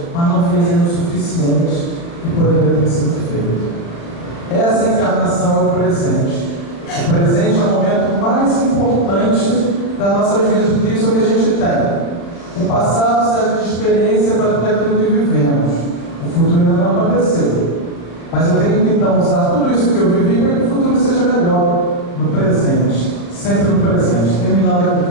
mas não fez ainda o suficiente que poderia ter sido feito. Essa encarnação é o presente. O presente é o momento mais importante das nossas vidas, porque isso é o que a gente tem. O passado serve de experiência para tudo aquilo que vivemos. O futuro ainda não aconteceu. Mas eu tenho que então usar tudo isso que eu vivi para que o futuro seja melhor no presente. Sempre no presente. Terminando aqui com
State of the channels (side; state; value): right; late; 35 ms